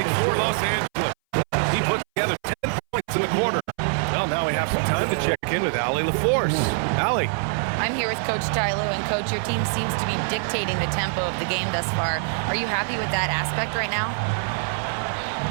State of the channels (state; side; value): silent; left; 60 dB below the other